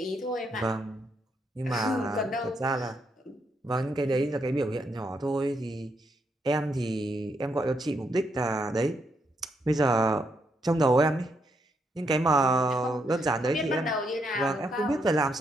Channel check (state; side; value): normal; both; correlation 0.78